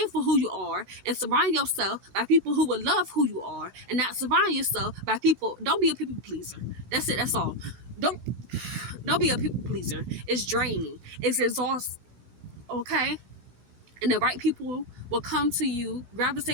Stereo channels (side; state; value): left; late; 16 ms